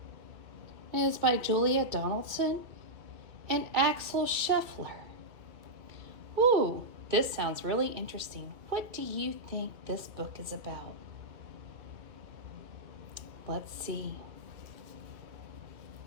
It is by Julia Donaldson and Axel Scheffler. Ooh, this sounds really interesting. What do you think this book is about? Let's see.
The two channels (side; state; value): left; late; 2.8 ms